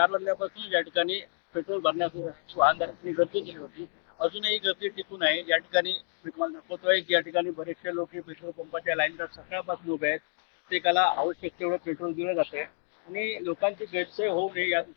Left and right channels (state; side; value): silent; right; digital silence